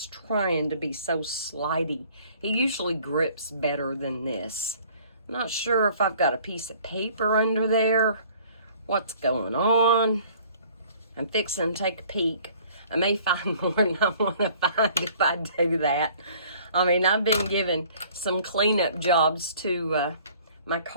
trying to be so slidey. It usually grips better than this. I'm not sure if I've got a piece of paper under there, what's going on. I'm fixing to take a peek. I may find more than I want to find if I do that. I mean, I've been given some cleanup jobs to my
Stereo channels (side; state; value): both; inverted; correlation -0.54